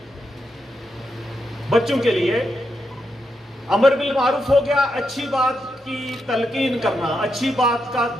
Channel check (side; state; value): both; normal; correlation 0.83